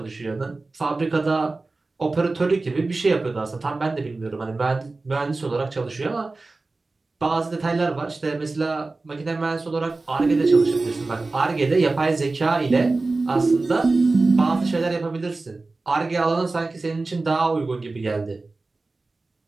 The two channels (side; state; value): left; quieter; 3.4 dB